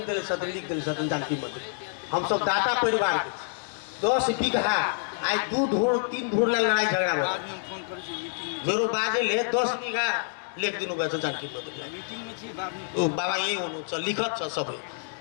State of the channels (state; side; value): silent; right; digital silence